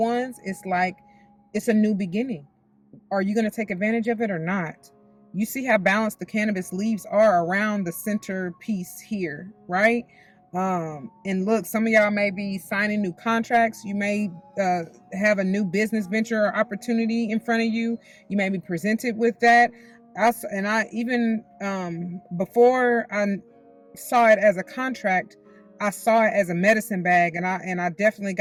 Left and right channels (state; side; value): identical; both; correlation 1.00